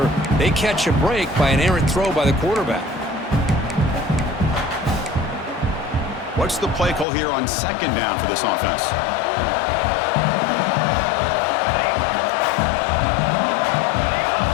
They catch a break by an errant throw by the quarterback. What's the play call here on 2nd down for this offense?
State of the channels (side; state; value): right; drops out; at 7.1 s